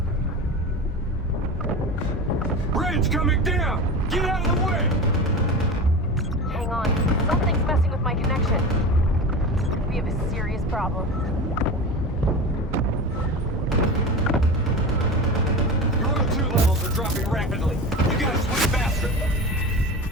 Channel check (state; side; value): normal; both; correlation 0.28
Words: Bridge coming down! Get out of the way! Hang on. Something's messing with my connection. We have a serious problem. Your O2 levels are dropping rapidly. You gotta swim faster.